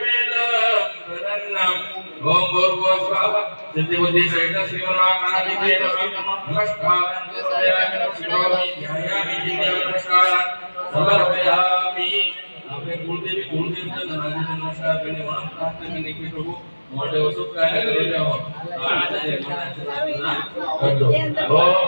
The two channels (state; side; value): inverted; both; correlation -1.00